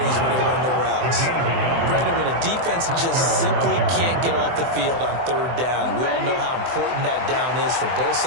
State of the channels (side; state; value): left; late; 24 ms